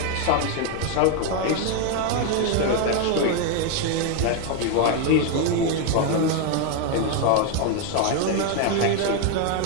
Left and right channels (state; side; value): different; both; correlation 0.01